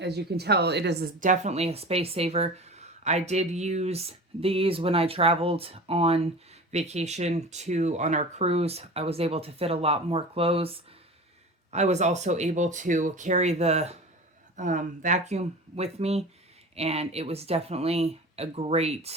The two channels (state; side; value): normal; both; correlation 0.35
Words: you can tell, it is definitely a space saver. I did use these when I traveled on vacation on our cruise. I was able to fit a lot more clothes. I was also able to carry the vacuum with me, and it was definitely a